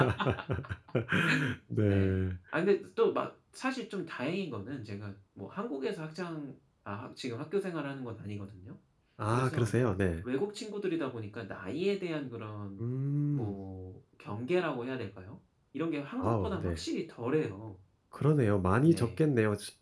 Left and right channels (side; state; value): both; identical; correlation 1.00